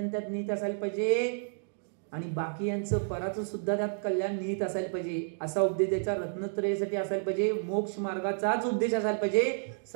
त्यात निहित असायला पाहिजे आणि बाकी यांचं पराचं सुद्धा त्यात कल्याण निहित असायला पाहिजे. असा उपदेश द्यायचा. रत्नत्रयासाठी असायला पाहिजे, मोक्ष मार्गाचाच उपदेश असायला पाहिजे,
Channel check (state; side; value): silent; left; digital silence